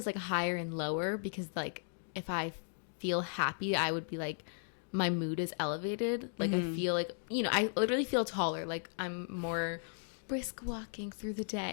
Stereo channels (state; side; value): silent; right; digital silence